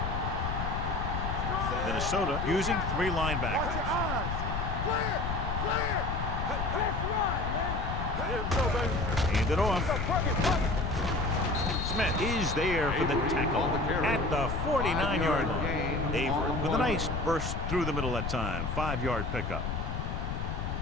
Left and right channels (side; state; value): left; noise; rumble, 2 dB below the sound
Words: Minnesota using 3 Watch linebackers. your eyes. Clear. Clear. That's right, man. Let's go, baby. Hand it off. Plug it, plug it. Smith is there for the tackle at the 49-yard line. Avery with a nice burst through the middle that time. 5-yard pickup.